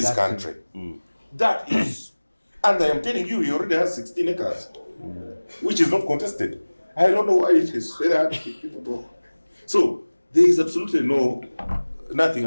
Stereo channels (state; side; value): inverted; both; correlation -1.00